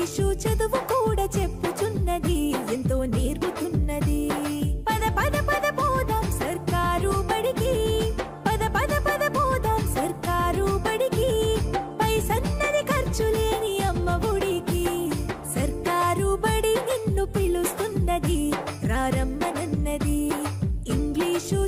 చదువు కూడా చెప్పుచున్నది ఎంతో నేర్పుతున్నది. పద పద పద పోదాం సర్కారు బడికి, పద పద పద పోదాం సర్కారు బడికి. పైసన్నది ఖర్చు లేని అమ్మ ఒడికి. సర్కారు బడి నిన్ను పిలుస్తున్నది రారమ్మనన్నది. ఇంగ్లీషు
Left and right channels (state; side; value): identical; both; correlation 1.00